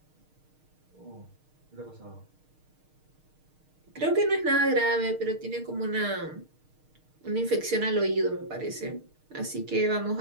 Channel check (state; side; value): late; left; 6.5 ms